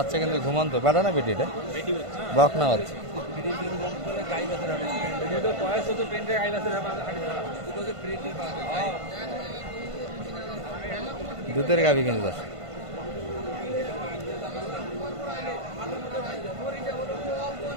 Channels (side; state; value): left; late; 1.5 ms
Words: কিন্তু ঘুমন্ত। বেটা না বেটি? এটা বকনা বাচ্চা। দুধের গাভি কিন্তু দর্শক।